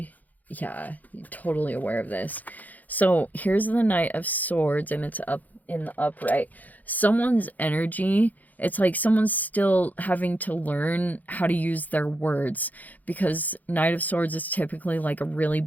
Yeah, you're totally aware of this. So here's the Knight of Swords, and it's up in the upright. Someone's energy, it's like someone's still having to learn how to use their words, because Knight of Swords is typically like a really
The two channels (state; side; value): late; right; 0.081 ms